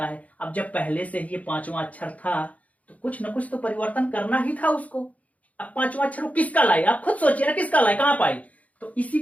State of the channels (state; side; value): late; right; 0.070 ms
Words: है। अब जब पहले से ही ये पांचवा अक्षर था तो कुछ ना कुछ तो परिवर्तन करना ही था उसको। अब पांचवा अक्षर वो किसका लाए, आप खुद सोचिए ना, किसका लाए, कहां पाए, तो इसी